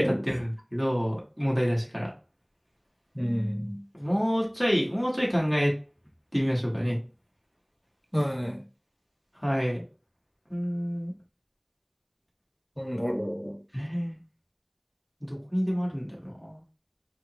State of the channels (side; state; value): both; identical; correlation 1.00